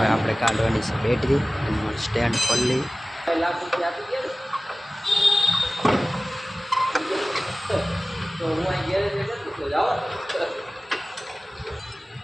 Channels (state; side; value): normal; both; correlation 0.97